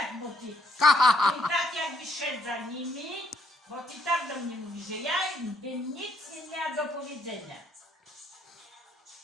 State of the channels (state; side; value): normal; both; correlation 0.70